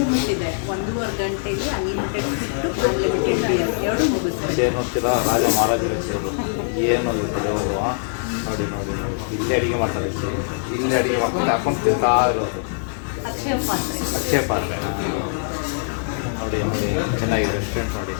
ಇದೆ, 1.5 ಗಂಟೆಗೆ ಅನ್ಲಿಮಿಟೆಡ್ ಫುಡ್ ಅನ್ಲಿಮಿಟೆಡ್ ಬಿಯರ್ ಎರಡು ಮುಗಿಸ್ತಾರೆ. ಚೇರ್ ನೋಡ್ತೀರಾ, ರಾಜ ಮಹಾರಾಜರ ಚೇರು ಏನು ಇರ್ತದೆ ಅವರು. ನೋಡಿ ನೋಡಿ ನೋಡಿ ಇಲ್ಲೇ ಅಡುಗೆ ಮಾಡ್ತಾರೆ, ಇಲ್ಲೇ ಅಡುಗೆ ಮಾಡ್ಕೊಂಡು ಹಾಕೊಂಡು ತಿಂತಾ ಇರೋದು. ಅಕ್ಷಯ ಪಾತ್ರೆ ನೋಡಿ ನೋಡಿ ಚೆನ್ನಾಗಿದೆ ರೆಸ್ಟೋರೆಂಟ್ ನೋಡಿ.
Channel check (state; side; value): silent; right; digital silence